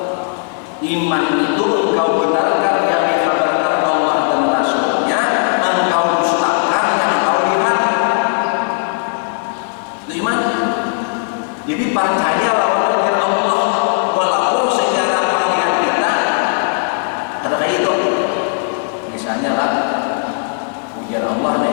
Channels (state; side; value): silent; right; 59 dB below the other